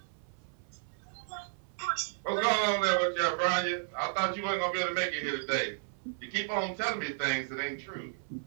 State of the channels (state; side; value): silent; left; 56 dB below the other